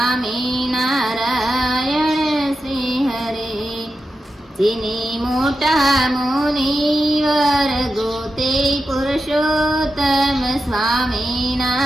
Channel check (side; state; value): both; normal; correlation 0.90